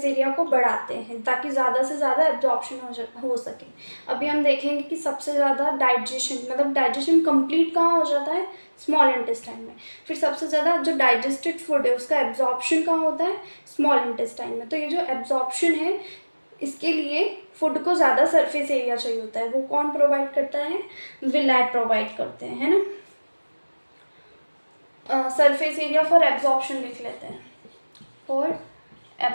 एरिया को बढ़ाते हैं ताकि ज़्यादा से ज़्यादा एब्जॉर्प्शन हो सके। अभी हम देखेंगे कि सबसे ज़्यादा डाइजेशन, मतलब डाइजेशन कंप्लीट कहाँ हो जाता है, स्मॉल इंटेस्टाइन में। फिर सबसे ज़्यादा जो डाइजेस्टेड फूड है उसका एब्जॉर्प्शन कहाँ होता है, स्मॉल इंटेस्टाइन में। तो ये जो एब्जॉर्प्शन है इसके लिए फूड को ज़्यादा सरफेस एरिया चाहिए होता है, वो कौन प्रोवाइड करता है, विलाय प्रोवाइड करते हैं, है ना। सरफेस एरिया फॉर एब्जॉर्प्शन लिख लेते हैं, फॉर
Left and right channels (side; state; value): both; inverted; correlation -1.00